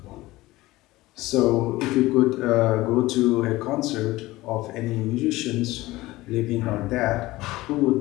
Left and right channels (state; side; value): quieter; right; 18.6 dB